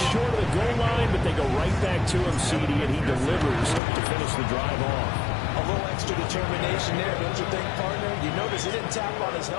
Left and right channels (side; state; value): right; drops out; at 3.8 s